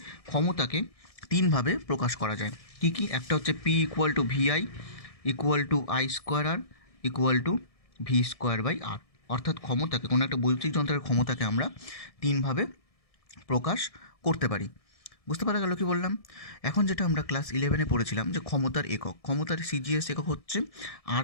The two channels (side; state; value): right; late; 1.6 ms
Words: ক্ষমতাকে তিনভাবে প্রকাশ করা যায়। কি কি? একটা হচ্ছে P equal to VI equal to I square R equal to V square by R. অর্থাৎ ক্ষমতাকে, কোনো একটা বৈদ্যুতিক যন্ত্রের ক্ষমতাকে আমরা তিনভাবে প্রকাশ করতে পারি। বুঝতে পারা গেল কি বললাম? এখন যেটা আমরা ক্লাস 11-এ পড়েছিলাম যে ক্ষমতার একক, ক্ষমতার সিজিএস একক হচ্ছে